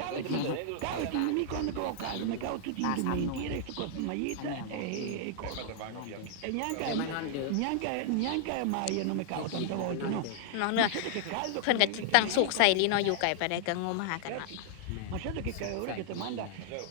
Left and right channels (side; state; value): both; different; correlation -0.01